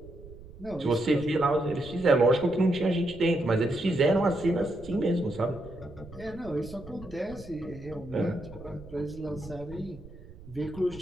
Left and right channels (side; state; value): right; noise; rumble, 18 dB below the sound